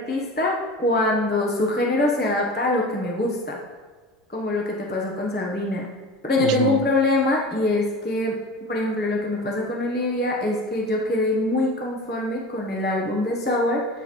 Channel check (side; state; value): both; normal; correlation 0.35